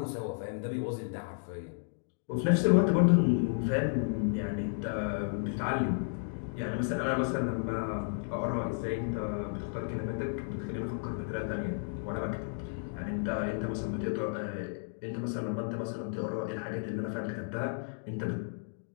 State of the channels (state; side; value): silent; right; digital silence